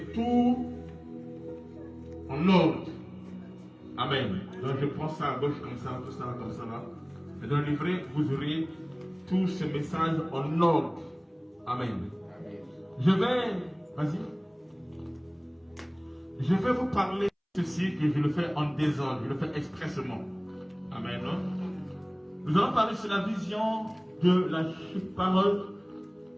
tout en ordre. Amen. Donc je prends ça à gauche comme ça, tout ça comme ça là. Et dans le livret, vous aurez tous ces messages en ordre. Amen. Vas-y. Je vais vous parler de ceci que je le fais en désordre, je le fais expressement. Amen. Nous allons parler sur la vision de la parole,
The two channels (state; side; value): identical; both; correlation 1.00